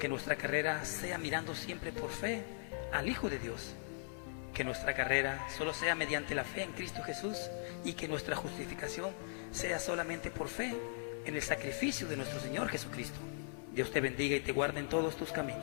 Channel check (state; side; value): silent; right; 52 dB below the other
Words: nuestra carrera sea mirando siempre por fe al Hijo de Dios. Que nuestra carrera solo sea mediante la fe en Cristo Jesús, y que nuestra justificación sea solamente por fe en el sacrificio de nuestro Señor Jesucristo. Dios te bendiga y te guarde en todos tus